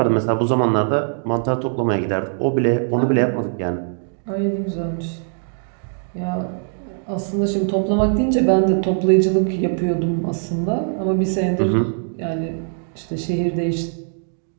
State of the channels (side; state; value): left; silent; 65 dB below the other